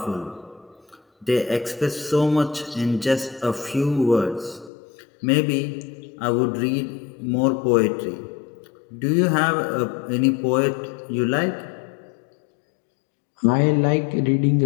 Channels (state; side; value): drops out; right; at 4.7 s